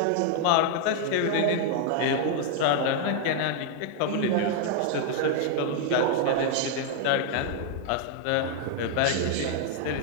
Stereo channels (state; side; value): different; both; correlation 0.00